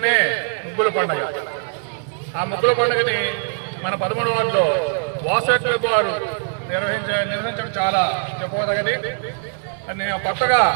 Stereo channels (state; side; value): silent; left; 60 dB below the other